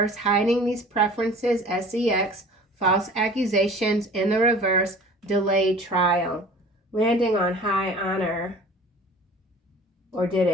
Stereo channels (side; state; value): both; normal; correlation 0.45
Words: Hiding these preferences, SEX, false accusations in the reverse, delayed trial. Landing on high honor. Or did